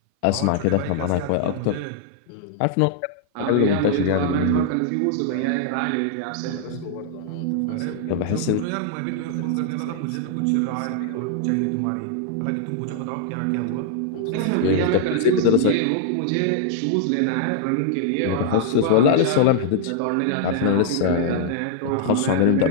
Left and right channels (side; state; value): both; different; correlation -0.01